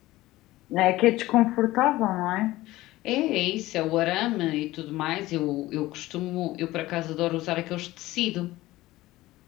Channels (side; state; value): right; quieter; 17.5 dB